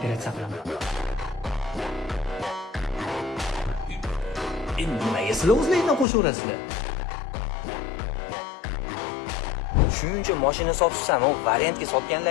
qilaman. Endi nimaga sizlar o'zlaringdan qo'shaverasizlar? Shuncha mashina sotsan, u variantga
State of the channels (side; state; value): right; drops out; at 6.1 s